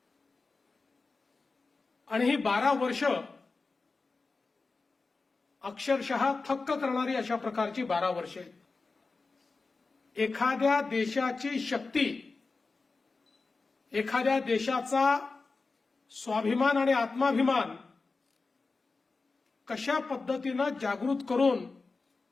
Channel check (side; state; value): right; quieter; 4.0 dB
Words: आणि ही 12 वर्ष अक्षरशः थक्क करणारी अशा प्रकारची 12 वर्षे आहेत. एखाद्या देशाची शक्ती, एखाद्या देशाचा स्वाभिमान आणि आत्माभिमान कशा पद्धतीनं जागृत करून